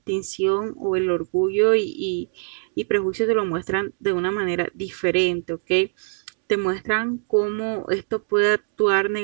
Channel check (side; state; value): left; silent; digital silence